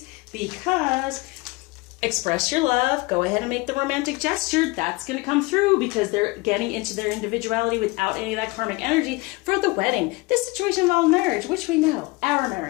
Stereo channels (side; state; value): right; quieter; 23.8 dB